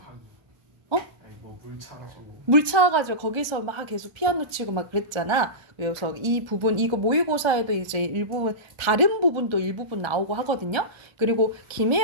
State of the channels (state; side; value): late; left; 1.3 ms